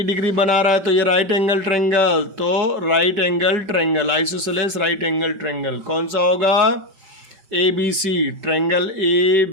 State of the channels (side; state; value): left; late; 5.2 ms